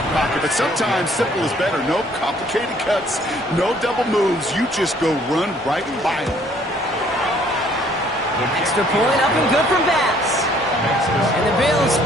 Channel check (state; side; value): normal; both; correlation 0.61